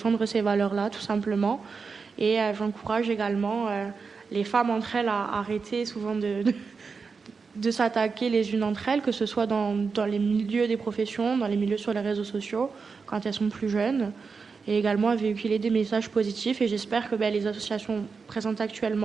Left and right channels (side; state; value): left; quieter; 5.0 dB